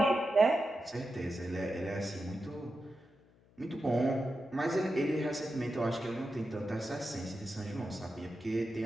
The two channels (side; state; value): left; noise; hum, 29 dB below the sound